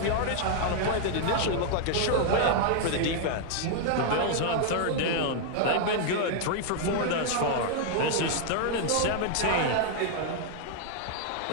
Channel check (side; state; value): both; different; correlation 0.00